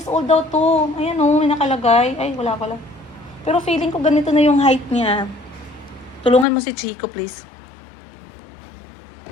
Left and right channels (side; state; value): right; drops out; at 6.5 s